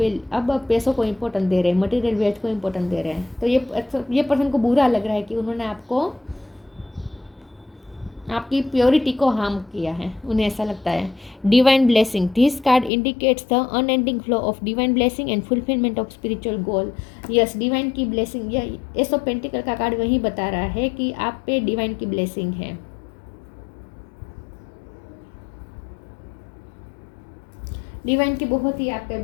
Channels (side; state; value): right; drops out; at 12.9 s